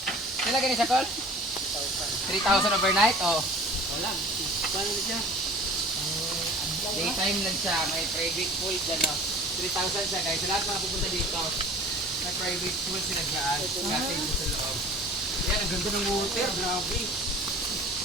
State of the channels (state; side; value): normal; both; correlation 0.44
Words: Pila ka ni sa call? 3,000 overnight? Oh. Wala. Paano na siya? Daytime lang siya. May private pool dyan. 3,000 siya guys. Sa lahat mga pupunta dito, may private pool sila dyan. Gating ko sa loob. Yan, ang ganda ng water. Grabe.